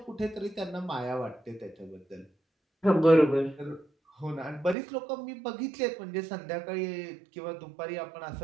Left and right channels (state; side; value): drops out; left; at 4.8 s